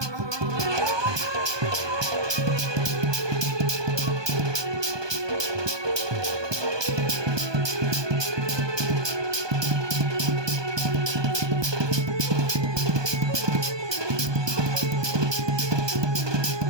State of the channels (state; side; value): late; left; 1.2 ms